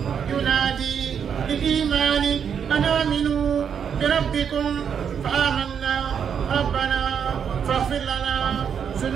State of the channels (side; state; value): left; quieter; 7.6 dB